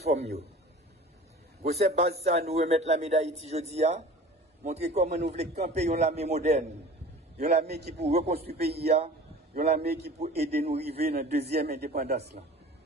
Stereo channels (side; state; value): both; normal; correlation 0.41